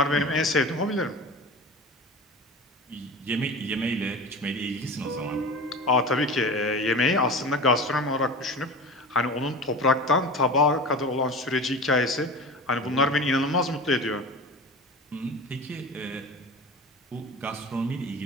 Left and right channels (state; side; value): normal; both; correlation 0.32